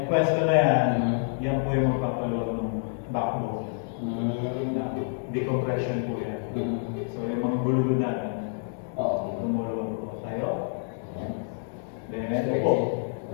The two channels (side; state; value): right; silent; 60 dB below the other